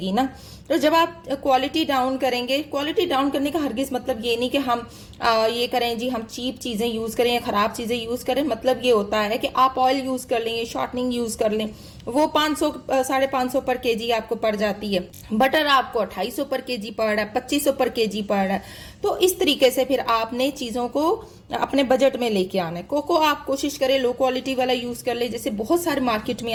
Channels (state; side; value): identical; both; correlation 1.00